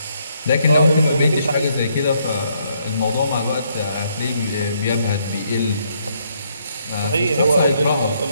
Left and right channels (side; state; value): both; inverted; correlation -0.72